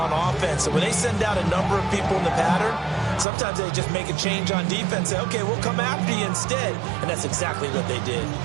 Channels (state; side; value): drops out; left; at 3.2 s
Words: offense. So when they send out a number of people in the pattern, sometimes they just make a change on defense. Say, okay, we'll come after you instead. And that's exactly what they did.